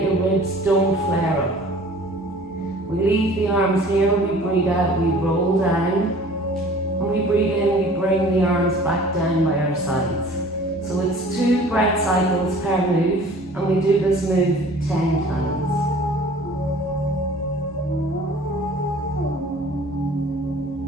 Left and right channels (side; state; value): both; normal; correlation 0.48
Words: your ribs don't flare up. We leave the arms here, we breathe out, we roll down. When we breathe in, we bring the arms back down by our sides. So it's 2 breath cycles per move, and we do this move 10 times.